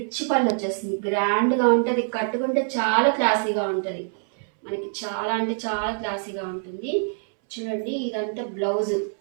పళ్ళు వచ్చేస్తుంది. గ్రాండ్గా ఉంటుంది. కట్టుకుంటే చాలా క్లాసీగా ఉంటుంది. మనకి చాలా అంటే చాలా క్లాసీగా ఉంటుంది. చూడండి, ఇదంతా బ్లౌజ్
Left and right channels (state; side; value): silent; left; 62 dB below the other